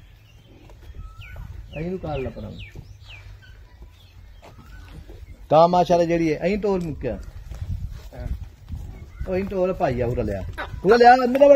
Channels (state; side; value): identical; both; correlation 1.00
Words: अहीं नु काल ला पर ता माशाल्लाह जेड़ी है अहीं टोल मुक्या ओ अहीं टोल भाई आ पूरा लिया अंदर